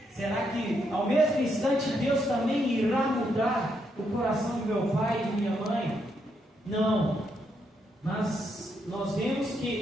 será que ao mesmo instante Deus também irá mudar o coração do meu pai e de minha mãe? Não, mas nós vemos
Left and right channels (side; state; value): both; normal; correlation 0.78